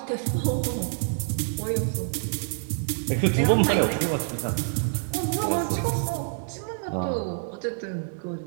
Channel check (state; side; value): silent; left; digital silence